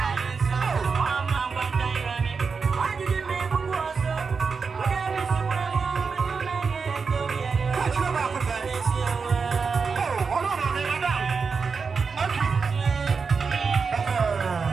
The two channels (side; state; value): left; quieter; 5.2 dB